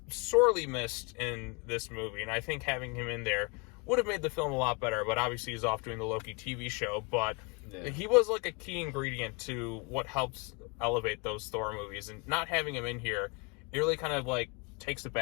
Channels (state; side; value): quieter; right; 30.6 dB